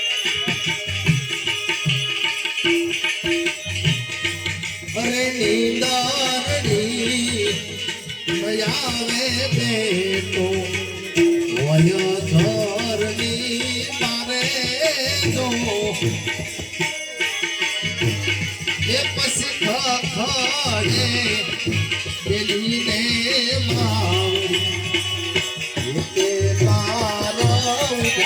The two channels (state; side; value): identical; both; correlation 1.00